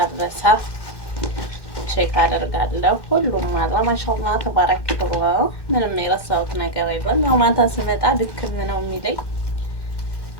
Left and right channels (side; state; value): right; late; 1.1 ms